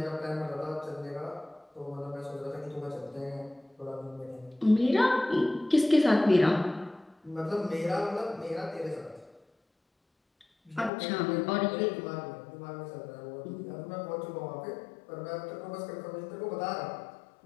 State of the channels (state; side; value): drops out; right; at 10.9 s